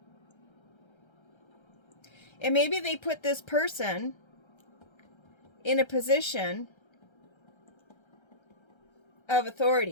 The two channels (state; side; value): late; right; 1.3 ms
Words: And maybe they put this person in a position of